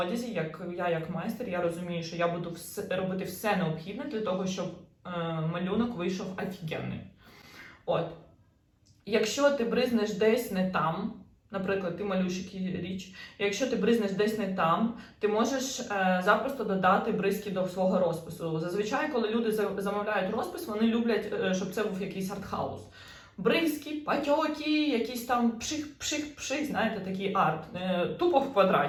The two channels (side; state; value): both; identical; correlation 1.00